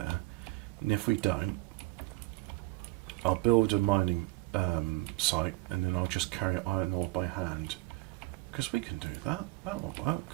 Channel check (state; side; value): quieter; left; 22.0 dB